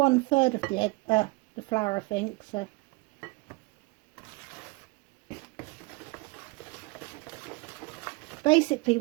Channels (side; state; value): left; quieter; 24.0 dB